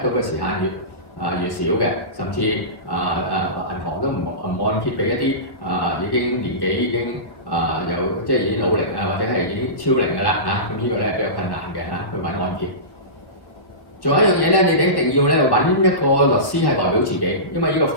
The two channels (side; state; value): right; late; 1.4 ms